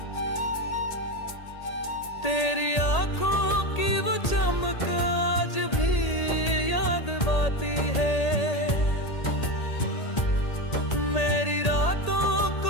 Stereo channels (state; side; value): late; right; 1.8 ms